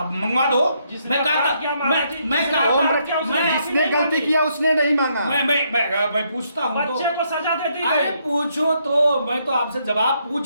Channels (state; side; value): inverted; both; correlation -0.74